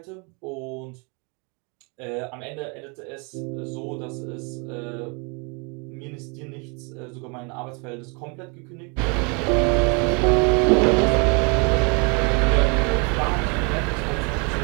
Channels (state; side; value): quieter; left; 32.8 dB